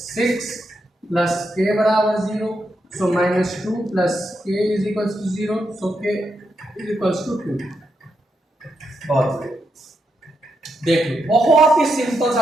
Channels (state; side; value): normal; both; correlation 0.83